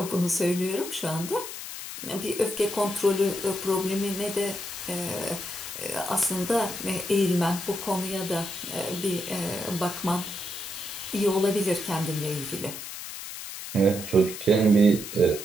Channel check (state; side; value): noise; left; hiss, 9 dB below the sound